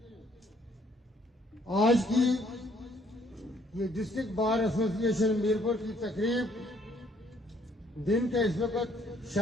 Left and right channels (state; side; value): normal; both; correlation 0.65